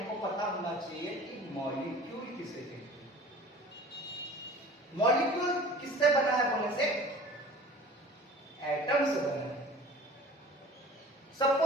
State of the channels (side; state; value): both; normal; correlation 0.44